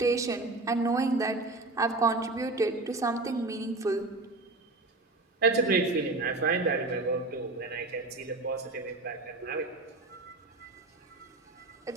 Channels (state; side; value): quieter; left; 3.2 dB